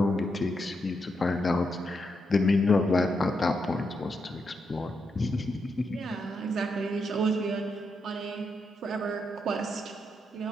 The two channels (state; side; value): normal; both; correlation 0.82